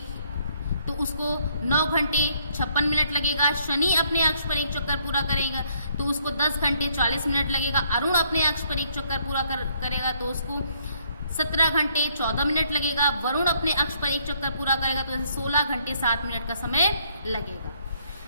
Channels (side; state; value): both; inverted; correlation -0.68